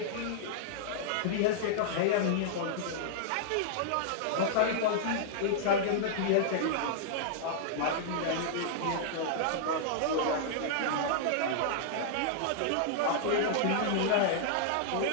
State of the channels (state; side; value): different; both; correlation -0.01